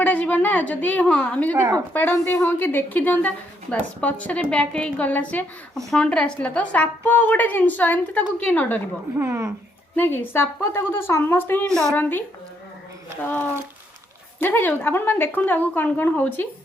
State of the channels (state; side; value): normal; both; correlation 0.73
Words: जीव ना जदि हाँ आम जब फोपाड़ती हाँ कि देखी दिंता बस पछरे बैक गला से फ्रंट रे आसला तो साप गोटे जिनस एमती किए न डर ना कि साप तो समस्ते ही डरती तो देखा जाऊ आपण मैंने देखु आगू कौन कौन हो